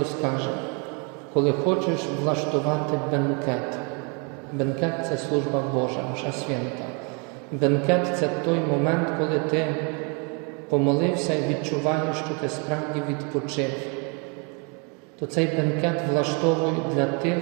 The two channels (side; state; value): left; quieter; 34.3 dB